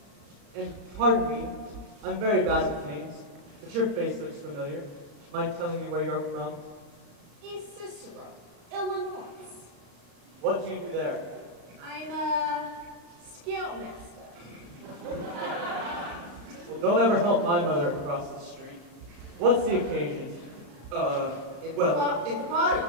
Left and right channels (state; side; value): late; left; 35 ms